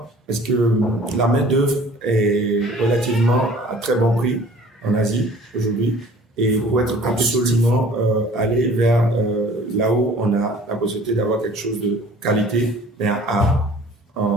Parce que la main-d'œuvre est relativement à très bon prix en Asie aujourd'hui. Et pour être absolument aller vers là où on a la possibilité d'avoir quelque chose de qualité, mais à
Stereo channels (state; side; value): normal; both; correlation 0.49